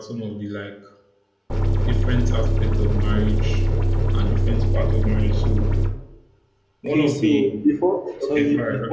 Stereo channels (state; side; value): identical; both; correlation 1.00